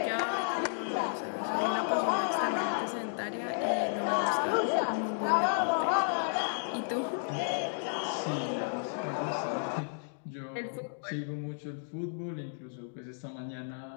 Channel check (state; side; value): silent; right; digital silence